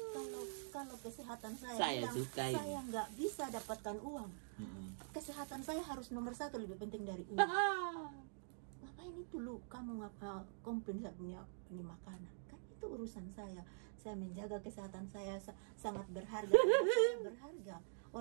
Kalau kesehatan saya nggak bisa dapatkan uang. Kesehatan saya harus nomor 1, lebih penting dari uang. Ngapain itu lu kamu komplain saya punya ini makanan? Kan itu urusan saya menjaga kesehatan saya sangat berharga. Saya berharga,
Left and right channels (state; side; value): silent; left; digital silence